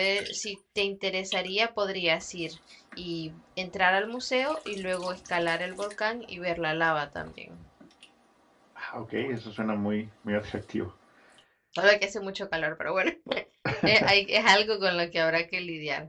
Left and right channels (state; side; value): identical; both; correlation 1.00